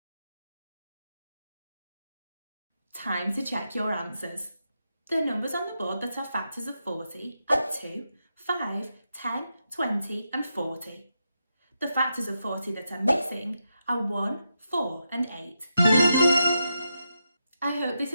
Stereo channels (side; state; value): both; inverted; correlation -0.86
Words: Time to check your answers. The numbers on the board that are factors of 40 are 2, 5, 10, 20 and 40. The factors of 40 that are missing are 1, 4 and 8. I hope this